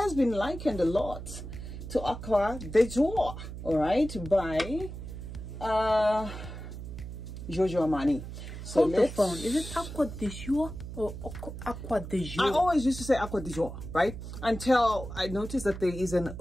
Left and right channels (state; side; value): noise; right; hum, 10 dB below the sound